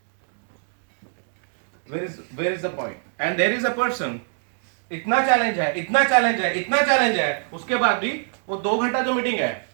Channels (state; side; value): silent; left; digital silence